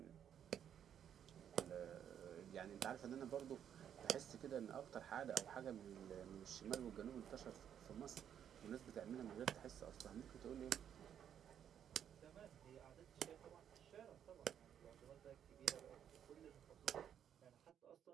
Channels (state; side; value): quieter; left; 9.2 dB